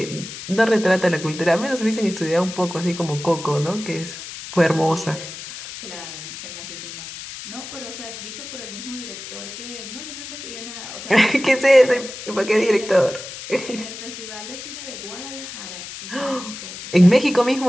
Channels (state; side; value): noise; left; hiss, 11 dB below the sound